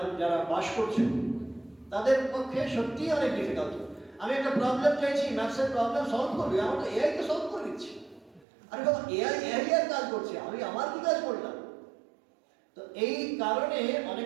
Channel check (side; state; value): left; drops out; at 8.5 s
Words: যারা বাস করছে তাদের পক্ষে সত্যিই অনেক ডিফিকাল্ট। আমি একটা প্রবলেম চাইছি, ম্যাথসের প্রবলেম সলভ করবি, আমার তো এআইকে সলভ করে দিচ্ছি। আরে বাবা, এআই এর কাজ করছে, আমি আমার কি কাজ করলাম? তো এই কারণে